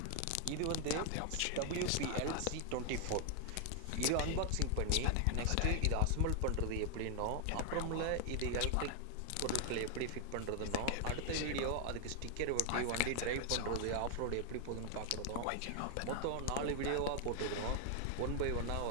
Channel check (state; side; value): different; both; correlation 0.00